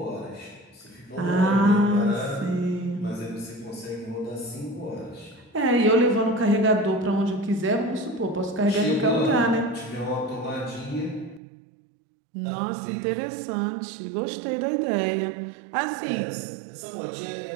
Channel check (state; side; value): drops out; left; at 11.4 s